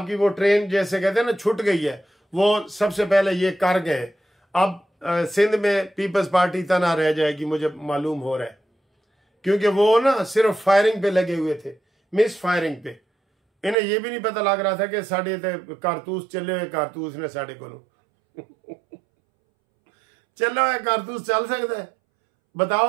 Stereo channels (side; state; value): left; drops out; at 13.8 s